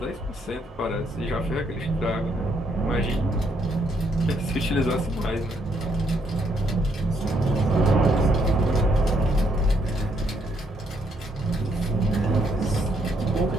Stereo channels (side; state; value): both; normal; correlation 0.72